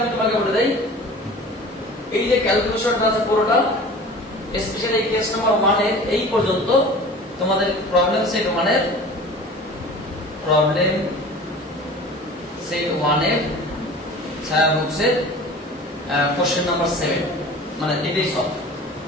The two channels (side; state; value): both; normal; correlation 0.40